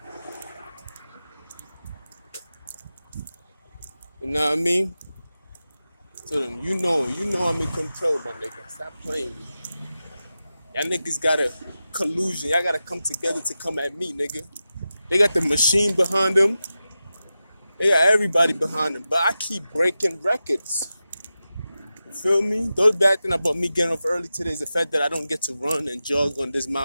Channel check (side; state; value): both; inverted; correlation -0.93